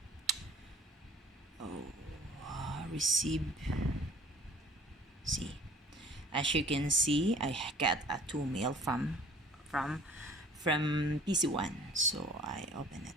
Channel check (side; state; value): both; normal; correlation 0.49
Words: Receive. See, as you can see, I got a 2 mail from PC1. So I open it.